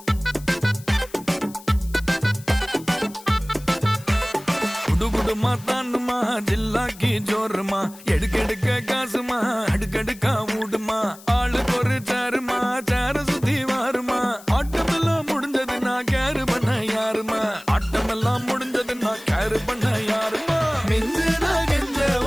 குடுகுடுமா தாண்டுமா ஜில்லாக்கி ஜோருமா எடுக்கெடுக்க காசுமா அடுக்கடுக்கா மூடுமா ஆளுக்கு ஒரு சாருமா சார சுத்தி வாருமா ஆட்டமெல்லாம் முடிஞ்சது நான் கேரு பண்ண யாருமா ஆட்டமெல்லாம் முடிஞ்சது நான் கேரு பண்ண யாருமா மிஞ்சு நான் கெஞ்ச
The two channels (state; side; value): noise; left; hiss, 20 dB below the sound